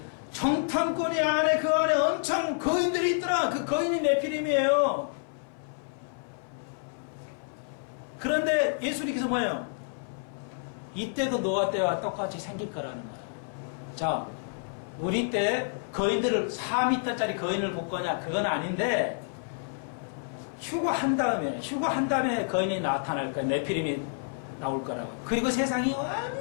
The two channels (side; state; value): right; silent; 57 dB below the other